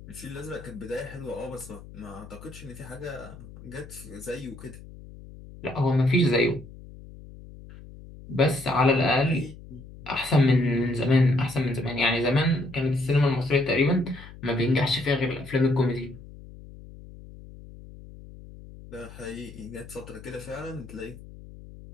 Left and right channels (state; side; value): noise; left; hum, 17 dB below the sound